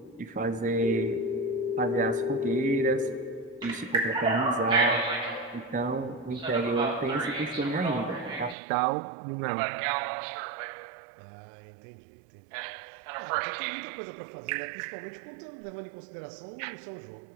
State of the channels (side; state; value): left; drops out; at 8.6 s